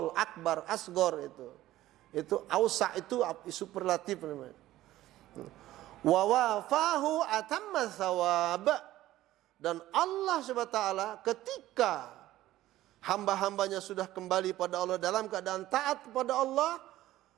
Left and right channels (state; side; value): quieter; left; 15.1 dB